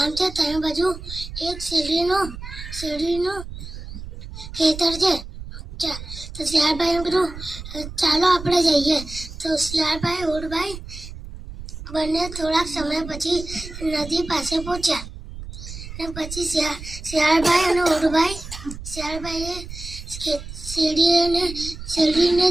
છે. ત્રણ બાજુ એક શેરડીનો ખેતર છે. તો શિયાળભાઈએ કીધું ચાલો આપણે જઈએ. તો શિયાળભાઈ ઊંટભાઈ બંને થોડાક સમય પછી નદી પાસે પહોંચ્યા. અને પછી શિયાળભાઈ અને શિયાળભાઈએ શેરડીને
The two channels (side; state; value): right; noise; rumble, 11 dB below the sound